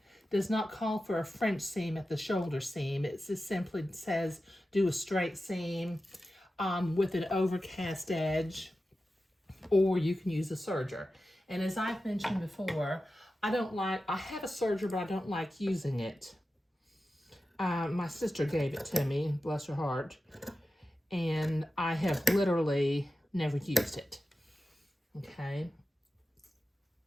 does not call for a French seam at the shoulder seam. It just simply says do a straight seam with an overcast edge, or you can use a serger. And as I've mentioned before, I have a serger, but I don't like using it. My sister gave it to me, bless her heart, and I have literally never used it, okay?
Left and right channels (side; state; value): both; normal; correlation 0.93